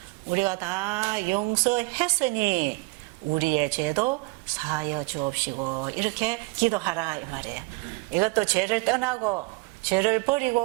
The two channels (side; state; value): left; quieter; 28.0 dB